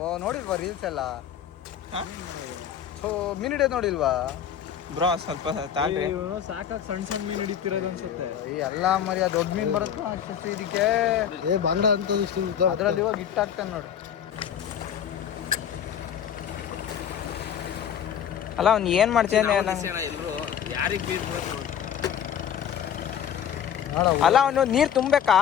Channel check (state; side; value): quieter; right; 9.0 dB